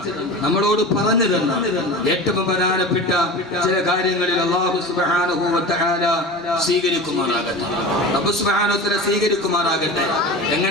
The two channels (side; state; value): both; normal; correlation 0.32